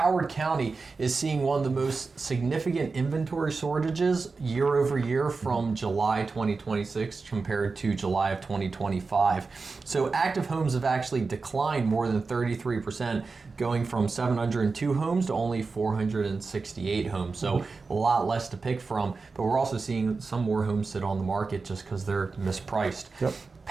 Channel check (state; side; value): quieter; left; 4.3 dB